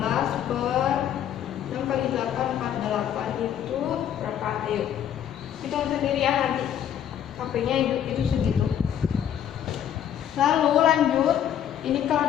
per 6 kali 8 48 itu berapa? Ayo hitung sendiri ya, nanti HP-nya itu segitu. Lalu lanjut, ini kalau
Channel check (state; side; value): quieter; right; 9.9 dB